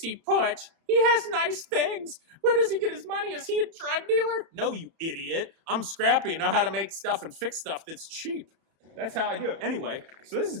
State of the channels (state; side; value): late; left; 31 ms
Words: Putsch. He has nice things. Where does he get his money? Is he a drug dealer? No, you idiot. I'm scrappy and know how to make stuff and fix stuff that's cheap. That's how I do it. Anyway, so this is